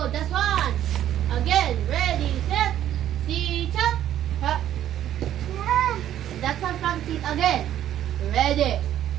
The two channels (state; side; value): quieter; left; 11.5 dB